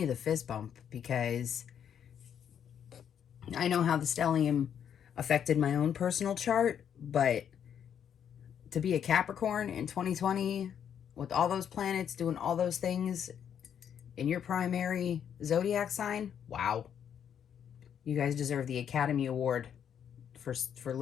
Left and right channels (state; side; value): quieter; right; 8.6 dB